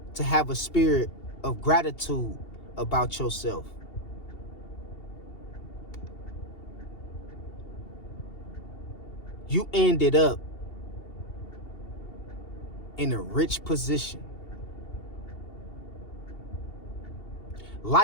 to have a spirit of gratitude about yourself. You ended up in a rich position.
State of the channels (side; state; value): right; late; 2.8 ms